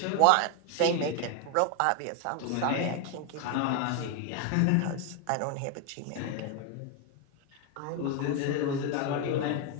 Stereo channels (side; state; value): both; different; correlation 0.01